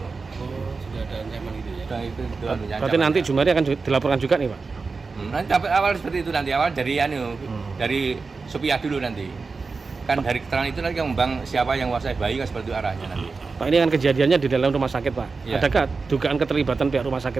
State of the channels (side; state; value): left; quieter; 4.4 dB